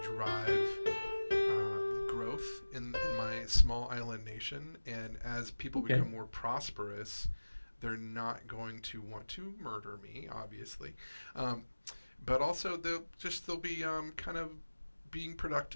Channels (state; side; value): inverted; both; correlation -1.00